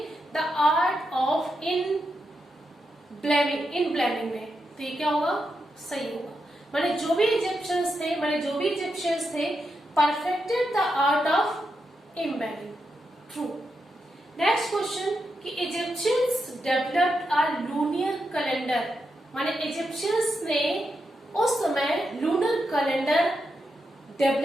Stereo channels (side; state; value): both; normal; correlation 0.85